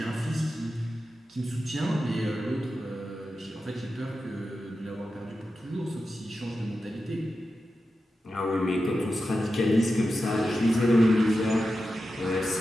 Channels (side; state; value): both; normal; correlation 0.91